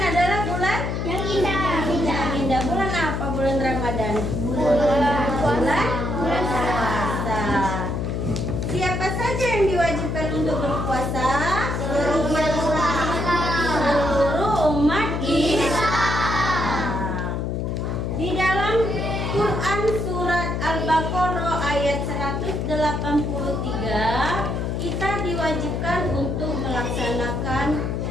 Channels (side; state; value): left; noise; hum, 1 dB below the sound